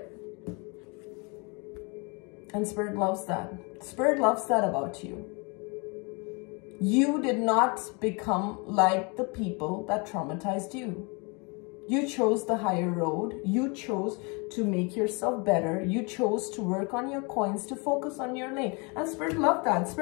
And spirit loves that. Spirit loves that about you. You did not become like the people that traumatized you. You chose the higher road. You chose to make yourself better. You chose to work on your coins, to focus on your lane. And spirit loved that.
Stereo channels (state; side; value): quieter; right; 31.0 dB